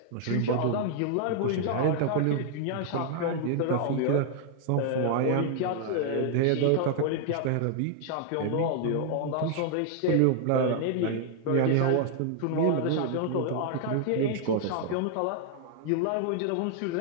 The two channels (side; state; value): both; different; correlation 0.00